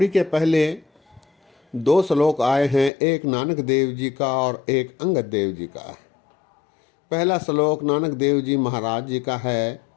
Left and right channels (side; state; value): right; drops out; at 2.9 s